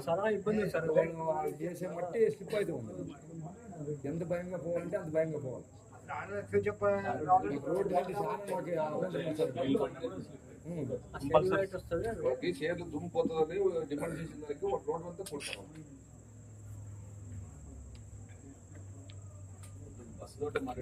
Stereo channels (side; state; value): both; identical; correlation 1.00